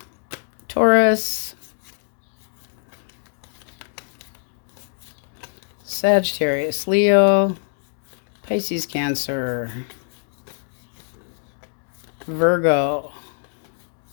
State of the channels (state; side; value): silent; right; digital silence